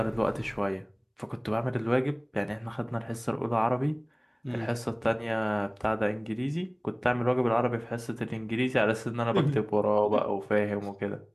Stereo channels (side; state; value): both; identical; correlation 1.00